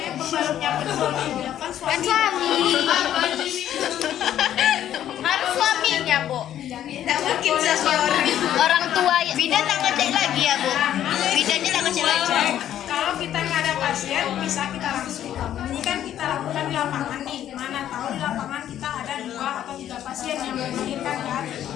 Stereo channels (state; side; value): quieter; right; 11.2 dB